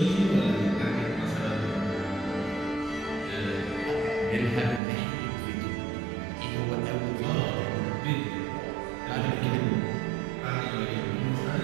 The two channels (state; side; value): drops out; left; at 4.8 s